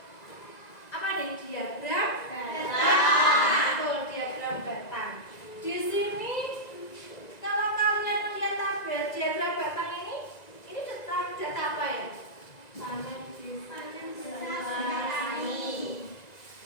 apa nih? Diagram batang. Betul, diagram batang. Di sini kalau kalian melihat tabel diagram batang ini tentang data apa ya? Panen desa tentang apa?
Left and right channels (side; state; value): right; late; 1.9 ms